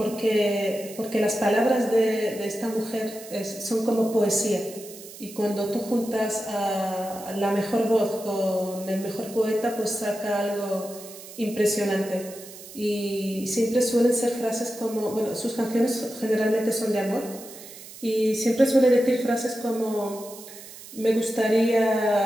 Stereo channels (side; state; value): right; noise; hiss, 16 dB below the sound